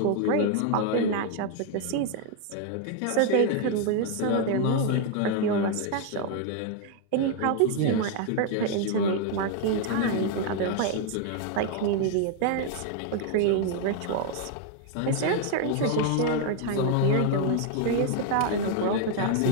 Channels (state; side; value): different; both; correlation 0.00